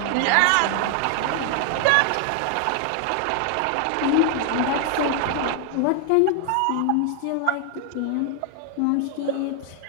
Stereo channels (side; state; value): both; different; correlation 0.00